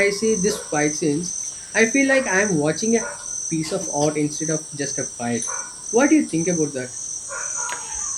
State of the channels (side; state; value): both; identical; correlation 1.00